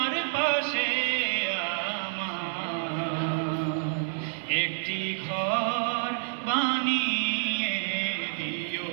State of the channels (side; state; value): left; silent; 59 dB below the other